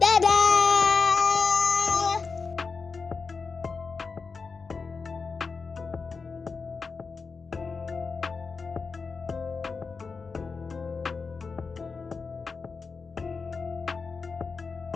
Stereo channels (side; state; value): right; quieter; 4.8 dB